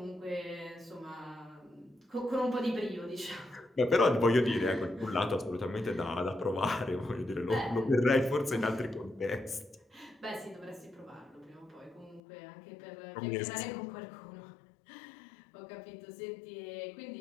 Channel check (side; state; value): right; drops out; at 12.2 s